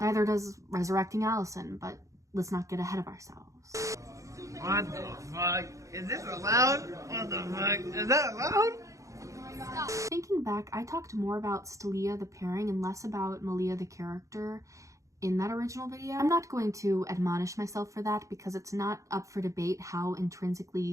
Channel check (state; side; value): late; left; 0.15 ms